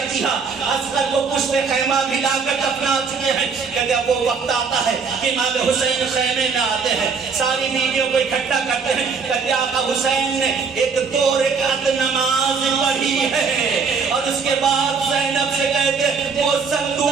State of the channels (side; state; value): left; quieter; 5.3 dB